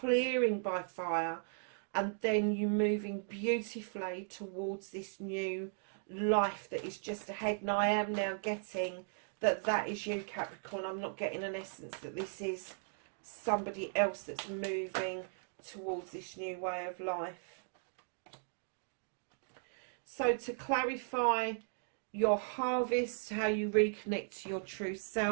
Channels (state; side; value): silent; left; digital silence